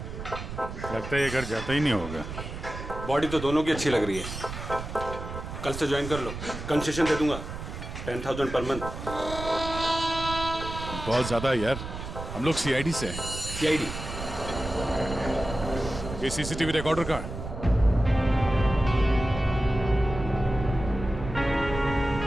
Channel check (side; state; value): right; noise; rumble, 8 dB below the sound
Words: लगता है ये घर जाता ही नहीं होगा। बॉडी तो दोनों की अच्छी लग रही है। कल से ज्वाइन कर लो, कंसेशन दे दूंगा 10,000 पर मंथ। बहुत ज्यादा है यार, हम लोग सीआईडी से हैं। सीआईडी? ये सीसीटीवी रिकॉर्डर कहाँ है?